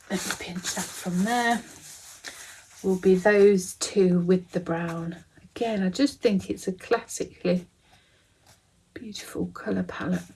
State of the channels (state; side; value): identical; both; correlation 1.00